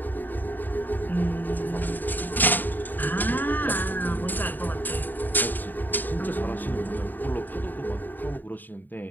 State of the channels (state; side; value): late; right; 0.089 ms